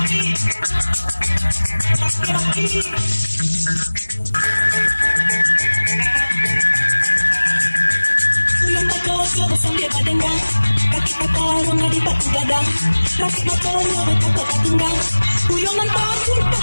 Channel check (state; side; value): inverted; both; correlation -1.00